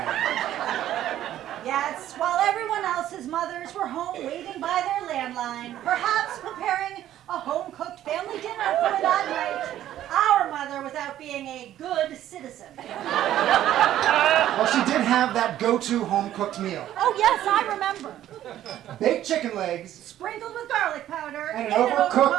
Yes, while everyone else's mothers were home waiting by their landline, perhaps preparing a home-cooked family dinner for that night, our mother was out being a good citizen. Well, she did have that go-to home-cooked meal. Oh yes, I remember. Baked chicken legs. Sprinkled with garlic powder. And an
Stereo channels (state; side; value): quieter; left; 12.4 dB